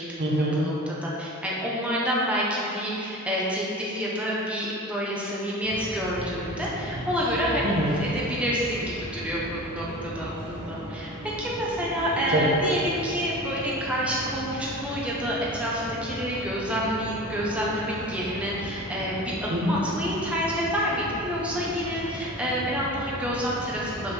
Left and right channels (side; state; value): both; normal; correlation 0.35